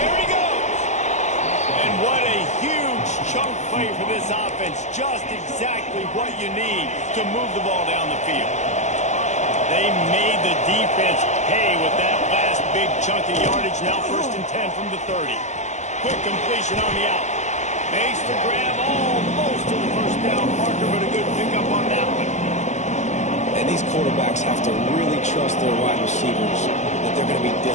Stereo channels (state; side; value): late; right; 0.34 ms